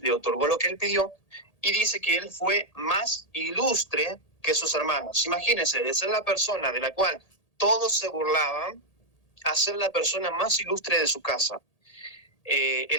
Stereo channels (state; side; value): late; right; 1.8 ms